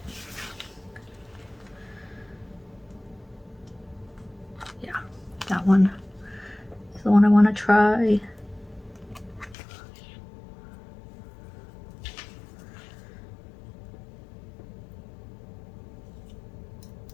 Yeah, that one is the one I want to try.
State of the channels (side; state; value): right; drops out; at 9.6 s